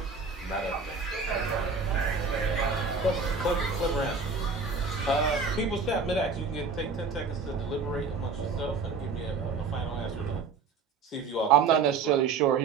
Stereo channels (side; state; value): left; quieter; 4.8 dB